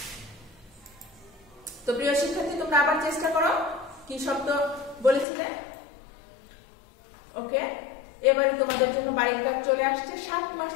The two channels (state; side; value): drops out; right; at 5.2 s